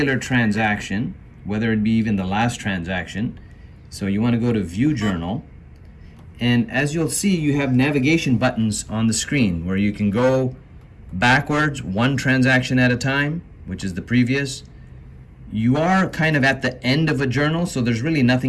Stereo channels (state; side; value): identical; both; correlation 1.00